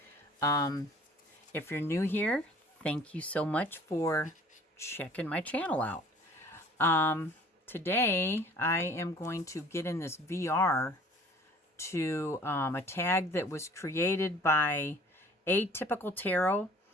If you're new here, thank you so much for checking my channel out. Today I am going to get in this VR to a tag that was created by Atypical Tarot.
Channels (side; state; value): both; normal; correlation 0.51